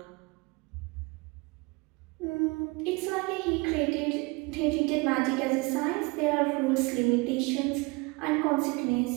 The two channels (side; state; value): left; quieter; 26.9 dB